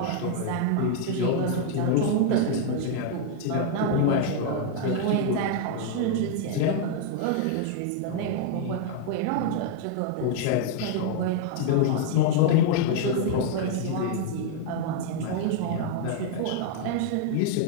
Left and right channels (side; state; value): both; different; correlation 0.00